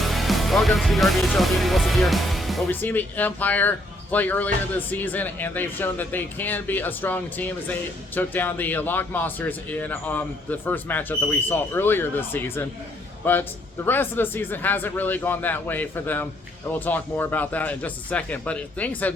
Welcome to the RBHL. Danny Wilson here. Well, we've seen the Empire play earlier this season, and they've shown that they can be a strong team as they took down the Lock Monsters in the first matchup that we saw earlier this season. But the rest of the season hasn't really gone that way for them, and we'll talk more about that in just a second. But things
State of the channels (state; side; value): normal; both; correlation 0.69